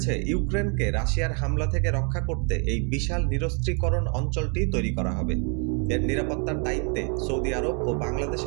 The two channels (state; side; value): quieter; left; 37.5 dB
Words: ইউক্রেনকে রাশিয়ার হামলা থেকে রক্ষা করতে এই বিশাল নিরস্ত্রীকরণ অঞ্চলটি তৈরি করা হবে। এর নিরাপত্তার দায়িত্বে সৌদি আরব ও